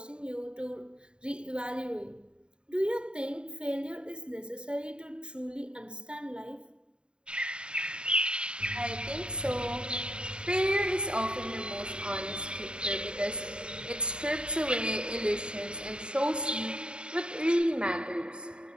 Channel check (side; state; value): left; late; 0.051 ms